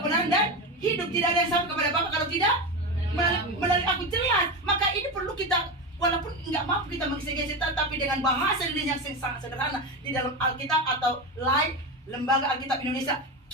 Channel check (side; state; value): both; normal; correlation 0.19